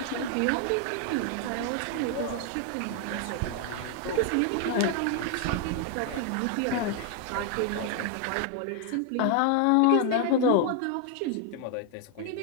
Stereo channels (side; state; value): both; different; correlation 0.00